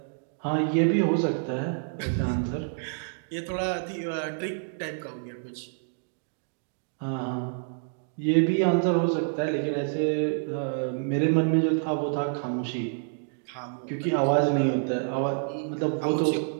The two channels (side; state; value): left; silent; digital silence